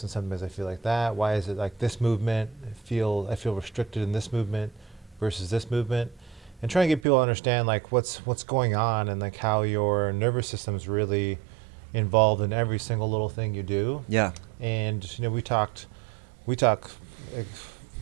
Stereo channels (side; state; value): left; drops out; at 7.0 s